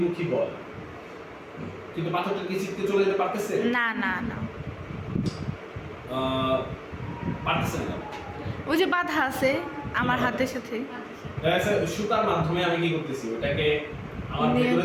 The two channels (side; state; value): both; identical; correlation 1.00